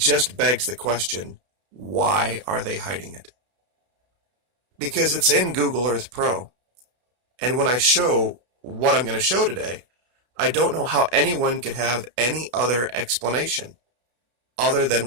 begs the question, why are they hiding it? Because it's in Google Earth Pro. And when I show what I'm going to show today, I don't know how anyone could have any other explanation other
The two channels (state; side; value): late; left; 32 ms